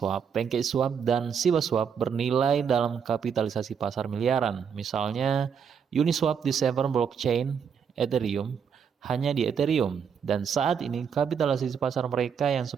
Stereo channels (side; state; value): left; quieter; 7.1 dB